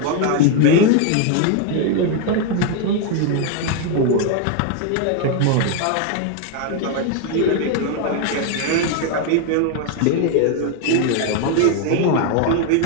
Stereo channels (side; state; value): both; different; correlation 0.01